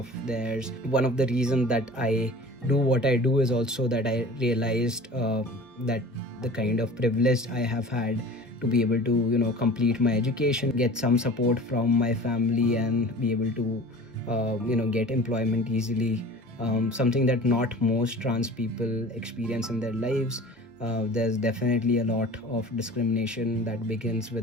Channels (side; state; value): both; normal; correlation 0.41